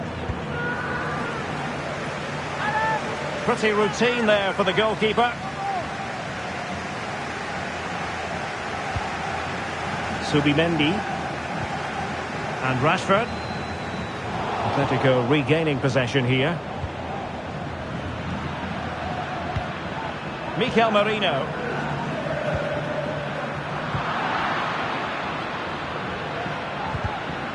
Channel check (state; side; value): identical; both; correlation 1.00